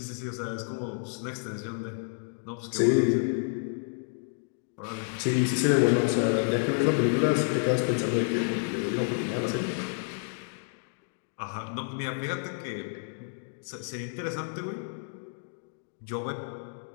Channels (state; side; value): silent; right; 58 dB below the other